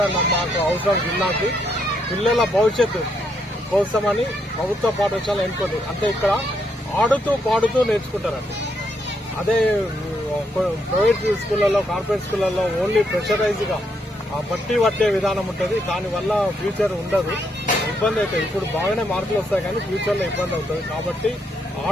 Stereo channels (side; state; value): both; normal; correlation 0.76